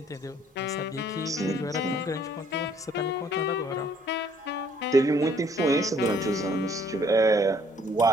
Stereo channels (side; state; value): both; normal; correlation 0.62